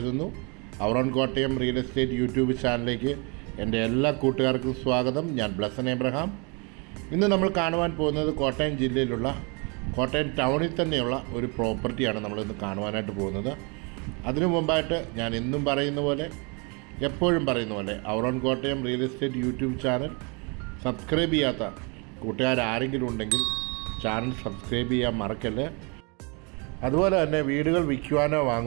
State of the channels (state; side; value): quieter; left; 32.1 dB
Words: Our own Kottayam real estate YouTube ചാനലിലേക്ക് എൻ്റെ എല്ലാ കൂട്ടുകാർക്കും സ്വാഗതം. ഞാൻ ബ്ലസൻ എബ്രഹാം. ഇന്ന് നമ്മൾ കാണുവാൻ പോകുന്നത് കോട്ടയം ജില്ലയിലുള്ള കോട്ടയം ടൗണിൽ തന്നെയുള്ള ഒരു പ്രോപ്പർട്ടിയാണ് നമ്മളിന്ന് കാണുവാനായിട്ട് പോകുന്നത്. അതിനു മുമ്പായിട്ട് ഞാൻ എന്നും പറയുന്ന പോലെ, എപ്പോഴും പറയുന്ന പോലെ, our own Kottayam real estate YouTube channel subscribe ചെയ്യാത്ത കൂട്ടുകാരാരെങ്കിലും ഉണ്ടെങ്കിൽ ചാനൽ സബ്സ്ക്രൈബ് ചെയ്യാൻ മറക്കല്ലേ. അതുപോലെ തന്നെ വീടുകൾ വിൽക്കുവാനോ